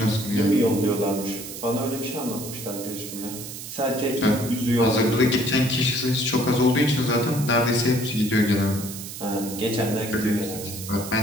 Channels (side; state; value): right; noise; hiss, 10 dB below the sound